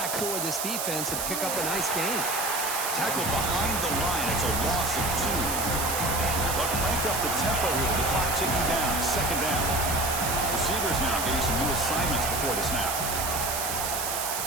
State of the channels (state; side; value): noise; right; hiss, 2 dB below the sound